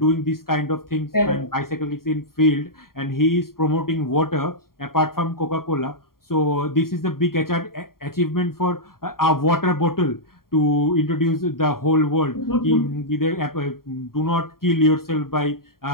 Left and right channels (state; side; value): late; right; 0.92 ms